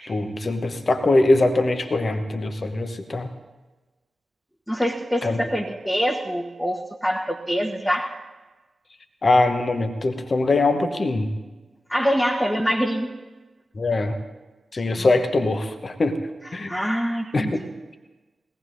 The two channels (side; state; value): both; normal; correlation 0.94